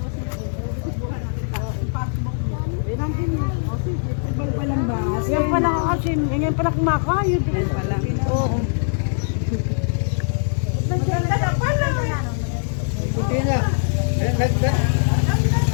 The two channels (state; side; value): silent; right; digital silence